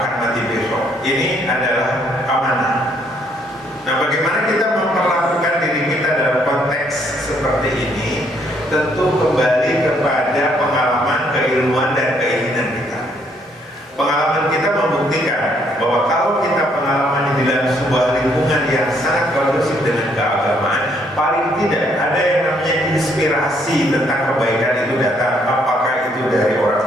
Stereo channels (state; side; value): normal; both; correlation 0.69